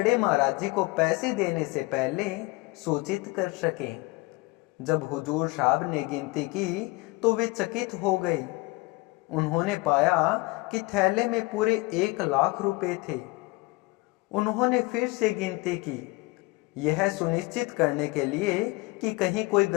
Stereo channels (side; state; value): right; quieter; 23.9 dB